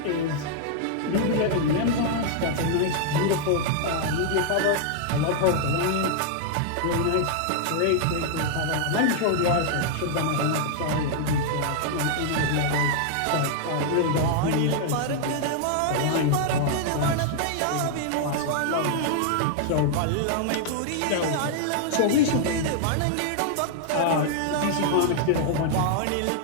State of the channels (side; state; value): both; different; correlation -0.01